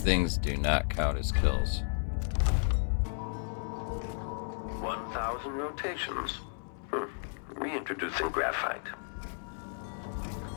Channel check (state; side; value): silent; right; digital silence